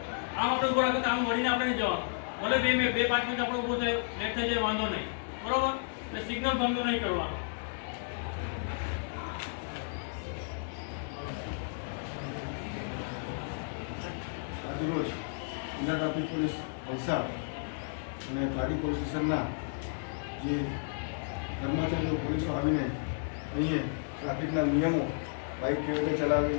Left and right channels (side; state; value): right; silent; digital silence